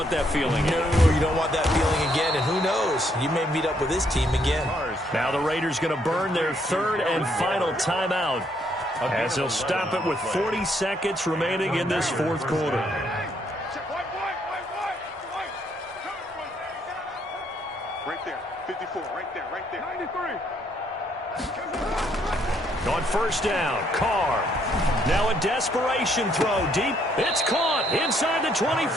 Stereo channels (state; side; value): normal; both; correlation 0.71